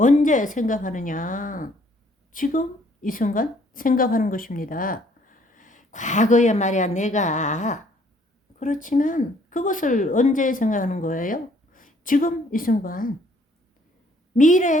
생각하느냐? 지금 이 순간 생각하는 것입니다. 과거에 말이야 내가 그렇지만 그것을 언제 생각하는 거예요? 지금 이 순간.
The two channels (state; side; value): normal; both; correlation 0.63